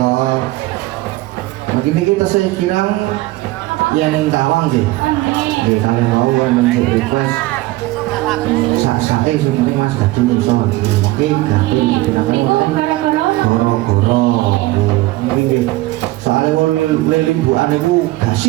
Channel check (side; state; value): left; quieter; 18.7 dB